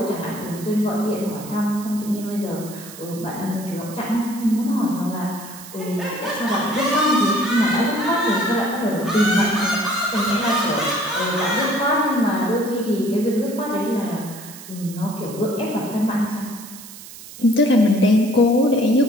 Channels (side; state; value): right; noise; hiss, 16 dB below the sound